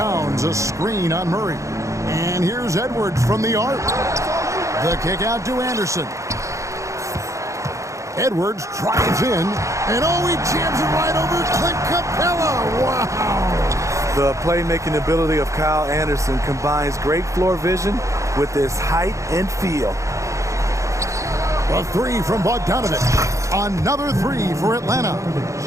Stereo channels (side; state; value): left; late; 0.15 ms